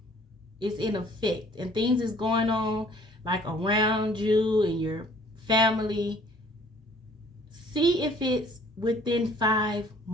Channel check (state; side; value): normal; both; correlation 0.56